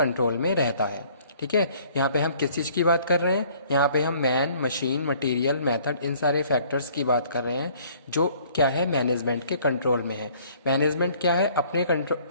में रहता है, ठीक है. यहाँ पे हम किस चीज़ की बात कर रहे हैं, यहाँ पे हम मैन, मशीन, मटेरियल, मेथड, इन सारे फैक्टर्स की बात कर रहे हैं जो क्या है, मैनेजमेंट के कंट्रोल में है. मैनेजमेंट क्या है, अपने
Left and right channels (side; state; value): both; inverted; correlation -0.57